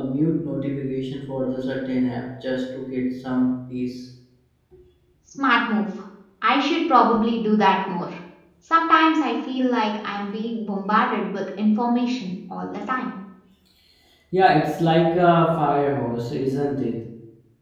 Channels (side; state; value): both; identical; correlation 1.00